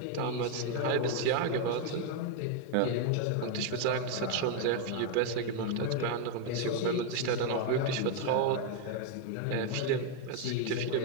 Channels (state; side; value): different; both; correlation 0.01